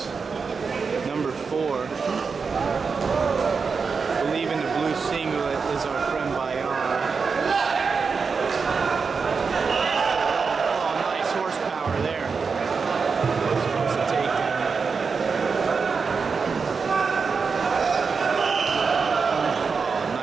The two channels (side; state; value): left; quieter; 5.2 dB